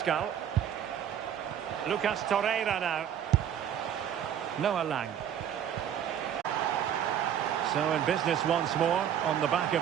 Lucas Torreira now. Noah Lang. So in business once more on the back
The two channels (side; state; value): left; quieter; 9.5 dB